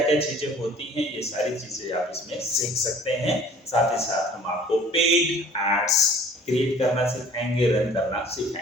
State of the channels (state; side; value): normal; both; correlation 0.50